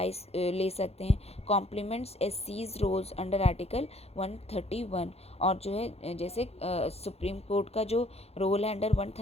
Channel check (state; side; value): late; right; 0.30 ms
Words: ले सकते हैं। कॉम्प्लीमेंट्स एससीज रोल्स अंडर आर्टिकल 131। और जो है जैसे सुप्रीम कोर्ट का जो रोल है अंडर